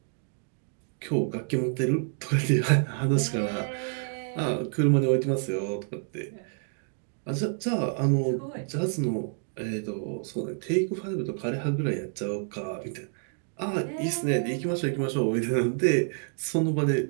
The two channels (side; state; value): left; silent; 56 dB below the other